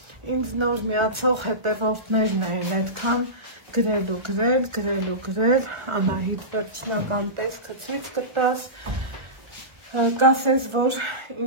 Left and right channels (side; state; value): left; late; 1.3 ms